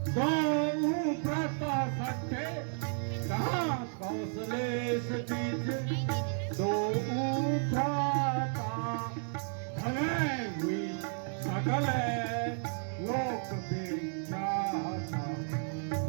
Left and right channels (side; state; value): left; silent; 56 dB below the other